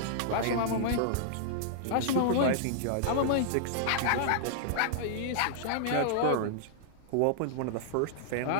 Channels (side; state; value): both; different; correlation -0.01